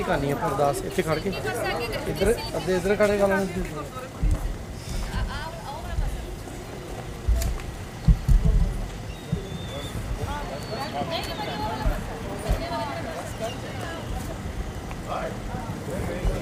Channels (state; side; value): identical; both; correlation 1.00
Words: ਕਰਨੀ ਆ ਅਰਦਾਸ ਇੱਥੇ ਖੜ ਕੇ ਇੱਧਰ ਅੱਧੇ ਇੱਧਰ ਖੜੇ ਕਰ ਲੈਣੇ